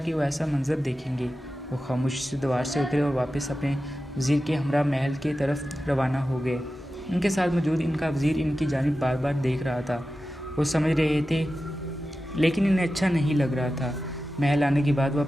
وہ ایسا منظر دیکھیں گے۔ وہ خاموشی سے دیوار سے اترے اور واپس اپنے وزیر کے ہمراہ محل کی طرف روانہ ہو گئے۔ ان کے ساتھ موجود ان کا وزیر ان کی جانب بار بار دیکھ رہا تھا۔ وہ سمجھ رہے تھے، لیکن انہیں اچھا نہیں لگ رہا تھا۔ محل آنے کے بعد وہ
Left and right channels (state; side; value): normal; both; correlation 0.93